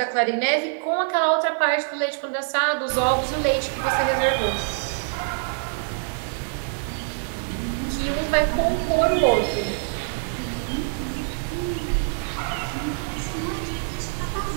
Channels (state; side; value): silent; left; 58 dB below the other